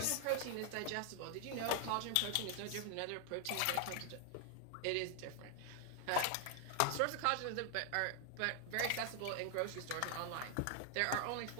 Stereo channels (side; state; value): both; different; correlation 0.00